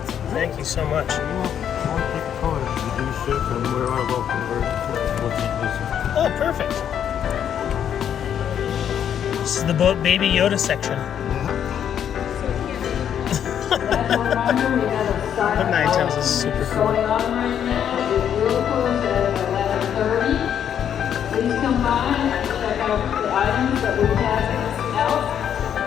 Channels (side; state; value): right; quieter; 9.1 dB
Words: Thank you so much. Oh, perfect. This is the Baby Yoda section. The 9 is super cool. Going on right now, it will close at 11:30. Please come by and check out the items that we have out.